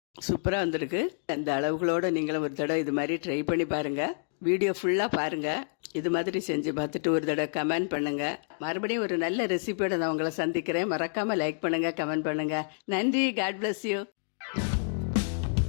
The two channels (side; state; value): right; silent; digital silence